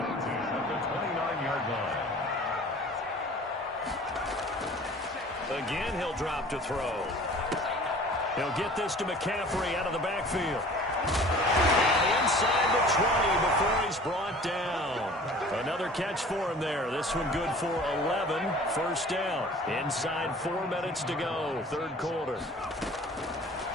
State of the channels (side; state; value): both; normal; correlation 0.46